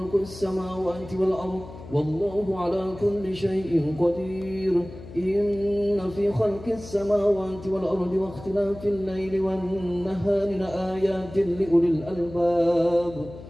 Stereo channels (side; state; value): left; noise; hum, 15 dB below the sound